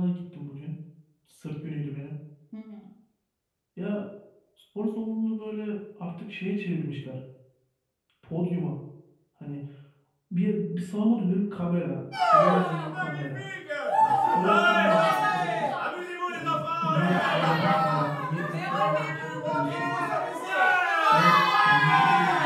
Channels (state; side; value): identical; both; correlation 1.00